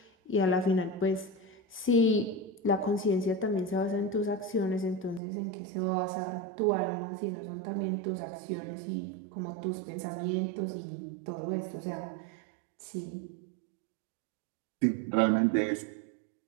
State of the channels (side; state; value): left; drops out; at 5.2 s